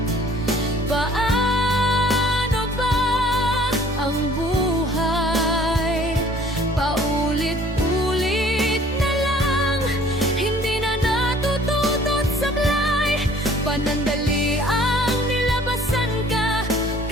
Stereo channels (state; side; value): normal; both; correlation 0.55